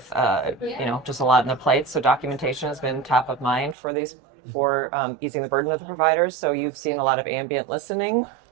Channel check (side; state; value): left; drops out; at 3.8 s